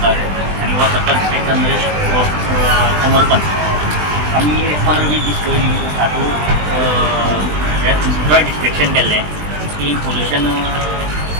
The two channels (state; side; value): late; left; 20 ms